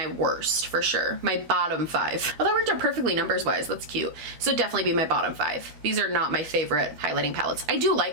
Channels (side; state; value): left; late; 13 ms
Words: worst for sure. My bottom 5. Oh, that worked out perfectly numbers wise. That's cute. So definitely be my bottom 5. These are not my favorite highlighting palettes. I do